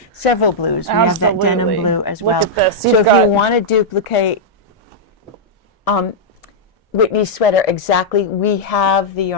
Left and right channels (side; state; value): both; normal; correlation -0.07